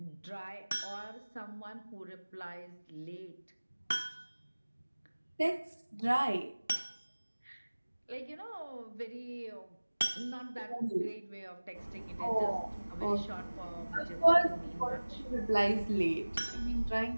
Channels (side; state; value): both; inverted; correlation -1.00